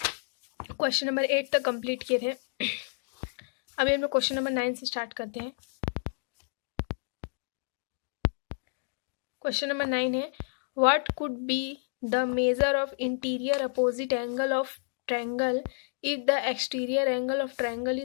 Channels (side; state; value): right; silent; digital silence